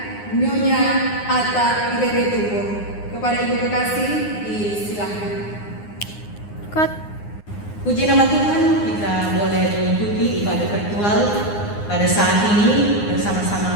Nyonya Atta Irene Tupo. Kepada Ibu Kekasih, disilakan. Puji nama Tuhan, kita boleh mengikuti ibadah virtual pada saat ini bersama-sama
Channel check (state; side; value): late; right; 9.7 ms